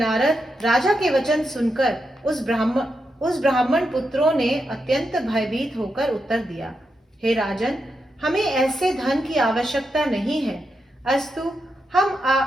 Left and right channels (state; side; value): normal; both; correlation 0.85